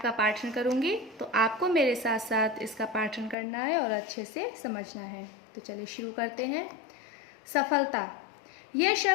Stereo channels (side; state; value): right; drops out; at 3.4 s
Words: का पाठन करूंगी। तो आपको मेरे साथ साथ इसका पाठन करना है और अच्छे से समझना है। तो चलिए शुरू करते हैं। सफलता, यह